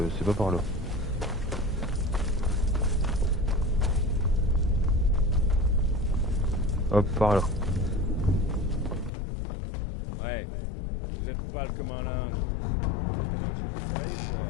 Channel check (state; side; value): drops out; right; at 9.1 s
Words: C'est pas par là. Hop, par là. Ouais, vous êtes pas le commandant.